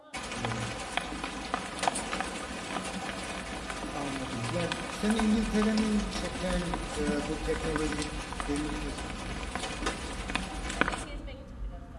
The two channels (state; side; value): identical; both; correlation 1.00